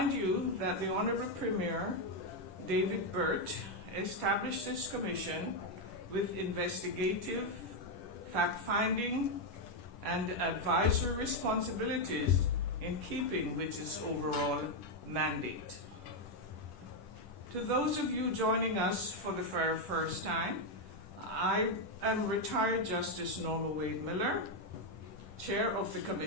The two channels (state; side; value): late; right; 10 ms